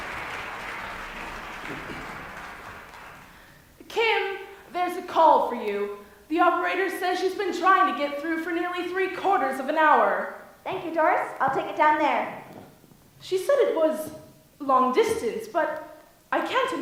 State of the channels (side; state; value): both; identical; correlation 1.00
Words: Kim, there's a call for you. The operator says she's been trying to get through for nearly 3/4 of an hour. Thank you, Doris. I'll take it down there. She said it was long distance, but I can't